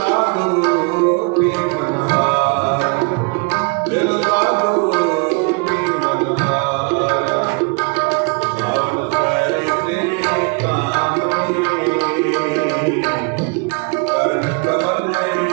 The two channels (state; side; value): quieter; left; 32.0 dB